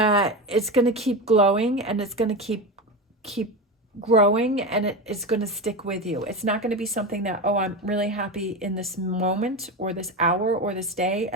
it's going to keep glowing, and it's going to keep growing, and it's going to stick with you. It's not going to be something that, oh, I'm really happy in this moment or this hour or this day,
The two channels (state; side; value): normal; both; correlation 0.20